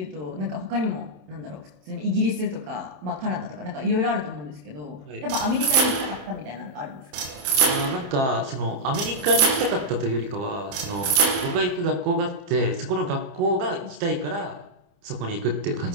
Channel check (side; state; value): left; late; 27 ms